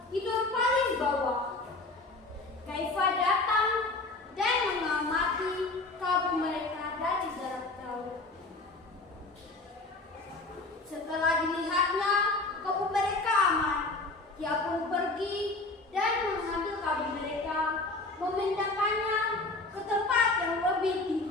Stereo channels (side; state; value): right; quieter; 3.2 dB